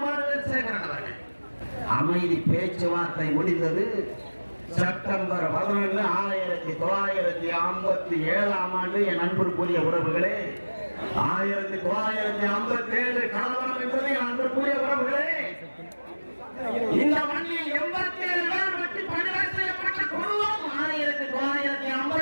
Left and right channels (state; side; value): inverted; both; correlation -1.00